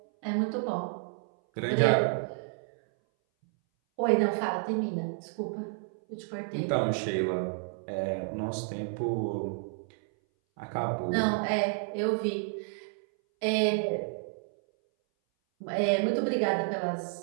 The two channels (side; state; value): left; silent; 57 dB below the other